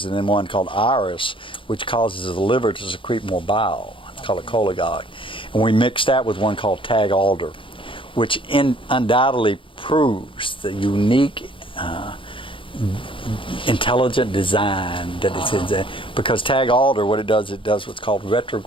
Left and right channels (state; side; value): late; right; 0.25 ms